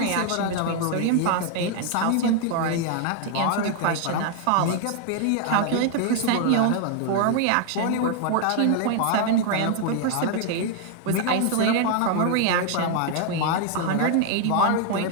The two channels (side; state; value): both; different; correlation 0.01